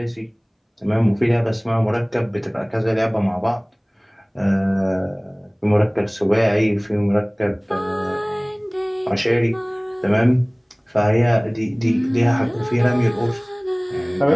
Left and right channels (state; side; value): identical; both; correlation 1.00